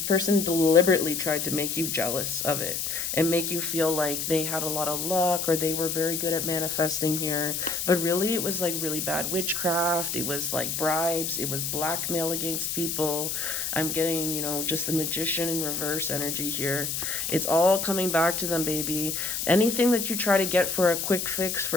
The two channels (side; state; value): left; noise; hiss, 2 dB below the sound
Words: person deliberately tried to make you jealous of it and make you feel like they had a lot of luck or they were very good at manifesting here. But really, it was like really bad witchcraft. It was like bribes. It was blackmail against people. I'm getting, just the magician in reverse energy here. It's all coming back to them, baby. Anything that you try to get for a quick fix,